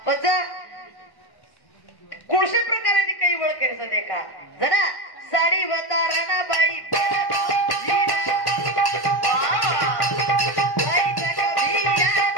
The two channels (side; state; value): right; late; 1.1 ms